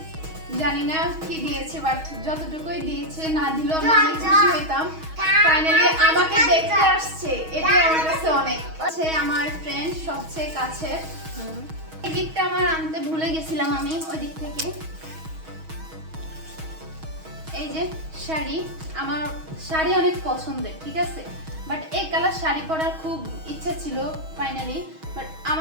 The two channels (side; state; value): left; late; 6.3 ms